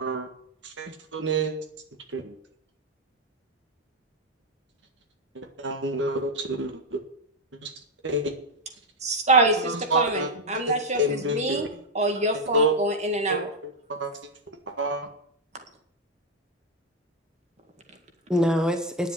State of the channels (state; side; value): normal; both; correlation 0.04